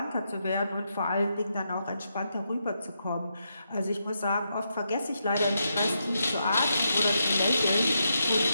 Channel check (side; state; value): both; inverted; correlation -0.83